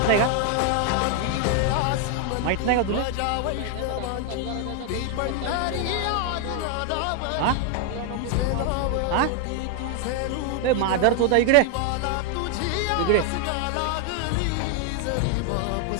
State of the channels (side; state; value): both; different; correlation 0.01